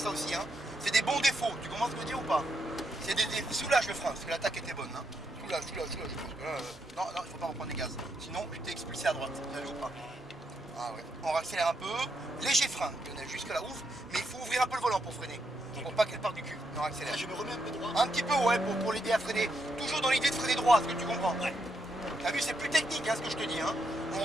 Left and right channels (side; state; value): both; normal; correlation 0.80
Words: aussi. Hein. C'est des bons défauts. Tu comprends ce que je veux dire ou pas? C'est des défauts. Soulage le frein, parce que l'attaque était bonne. Hein. Soulage. Non, il faut pas reprendre les gaz. Sinon, tu t'es expulsé à droite. T'as vu ou pas? Ah ouais. On accélère un peu. Léger frein, Lionel, jusque là ouf. Mais il faut ouvrir un peu le volant pour freiner. Pour pas qu'elle parte du cul. On accélère. Je me remets un peu droit. Un petit peu, ouais, pour l'aider à freiner. Toujours dans l'idée de freiner droit, est-ce que tu comprends? Ouais. T'as vu, c'est plus technique, hein, ce que je te dis. Hein. On